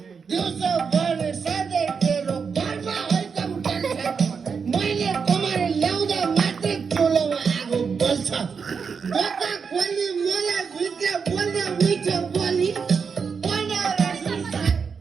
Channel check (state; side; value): quieter; left; 5.8 dB